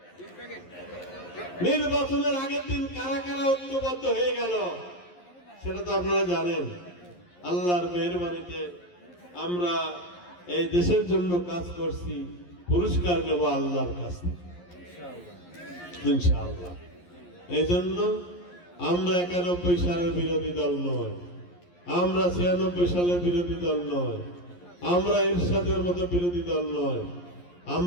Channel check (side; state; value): right; late; 11 ms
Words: নির্বাচনের আগের দিন কারা কারা ঐক্যবদ্ধ হয়ে গেল সেটা তো আপনারা জানেন। আল্লাহর মেহেরবানিতে আমরা এই দেশের জন্য কাজ করছি, পুরস্কার নেব আল্লাহর কাছে ইনশাআল্লাহ। এই জন্য আমরা 91 সালের বিরোধী দল নয়, আমরা 96 সালের বিরোধী দল নয়, আমরা ইরশাদের মতো বিরোধী দল নয়।